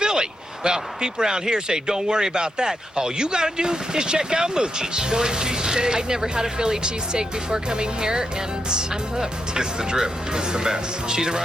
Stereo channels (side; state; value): both; normal; correlation 0.83